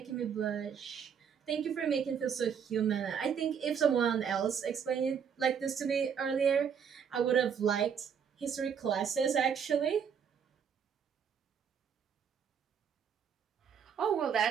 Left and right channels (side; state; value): left; quieter; 7.4 dB